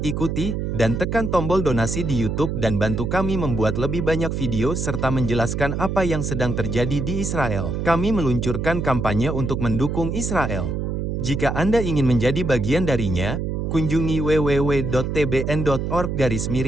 ikuti, dan tekan tombol donasi di YouTube dan bantu kami membuat lebih banyak video serta menjelaskan apa yang sedang terjadi di Israel. Kami meluncurkan kampanye untuk mendukung Israel. Jika Anda ingin menjadi bagian darinya, kunjungi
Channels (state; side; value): noise; right; hum, 2 dB below the sound